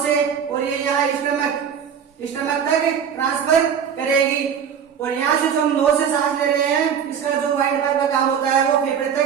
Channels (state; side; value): quieter; left; 7.7 dB